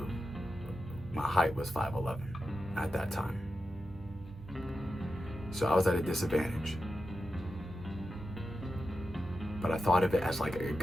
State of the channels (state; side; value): normal; both; correlation 0.90